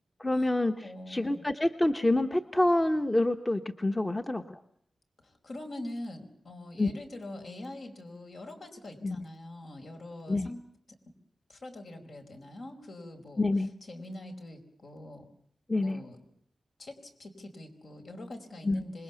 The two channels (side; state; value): both; normal; correlation 0.98